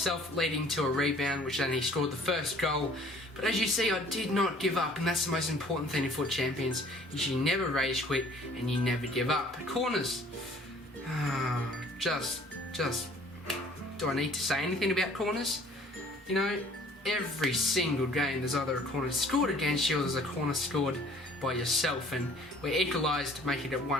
leading to a rebound, which then he scored the first goal. But as you see, I did not give up, and that's the most important thing in FUT Champions. Is you never rage quit and you never give up. Corners. Just. Do I need to say anything about corners? You know, every single game there's either a corner scored against you or there's a corner scored by yourself, and we equalised, making it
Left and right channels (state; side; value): normal; both; correlation 0.54